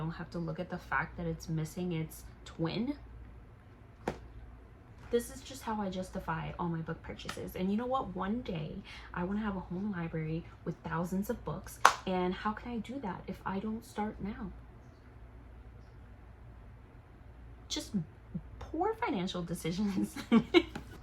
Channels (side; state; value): both; identical; correlation 1.00